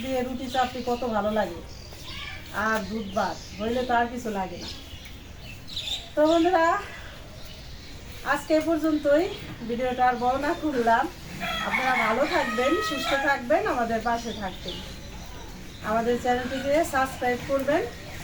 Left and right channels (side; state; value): both; identical; correlation 1.00